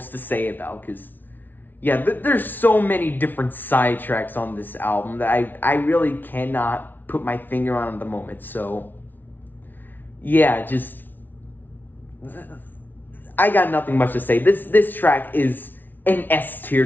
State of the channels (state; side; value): late; right; 0.088 ms